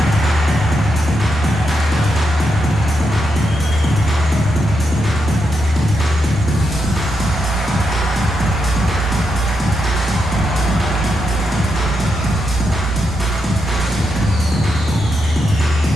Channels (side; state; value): both; normal; correlation 0.83